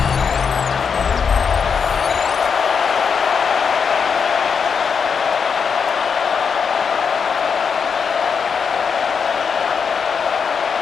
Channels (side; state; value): right; quieter; 6.2 dB